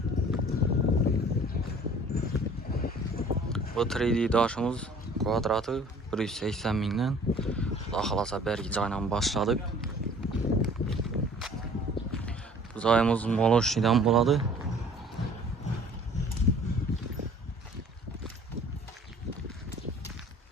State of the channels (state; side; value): normal; both; correlation 0.51